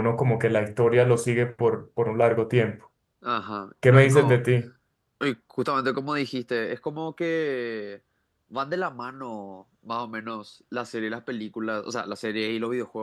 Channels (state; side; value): identical; both; correlation 1.00